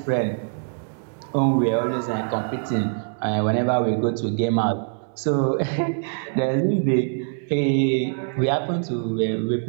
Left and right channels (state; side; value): silent; left; 62 dB below the other